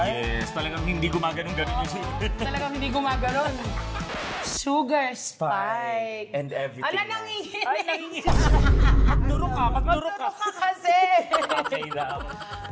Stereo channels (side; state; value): both; identical; correlation 1.00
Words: Yes, talagang hindi gumaganon-ganon yung sugar. Talagang hindi gumaganon. Sugar spike. And everything. Ala, nanginginig. Ay, nanginginig. Magduro ka, magduro ka. Magduro ka kasi. Okay na.